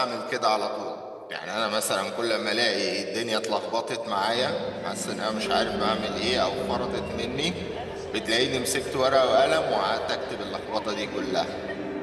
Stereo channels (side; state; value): both; identical; correlation 1.00